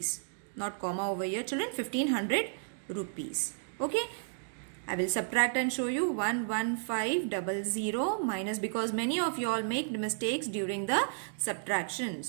Not comma over here, children. 1,500 rupees. Okay, I will subtract and show you 11500 minus, because many of you all make mistakes during the subtraction.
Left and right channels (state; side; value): silent; left; digital silence